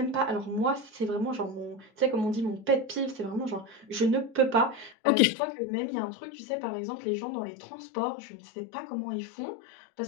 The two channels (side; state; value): right; drops out; at 5.0 s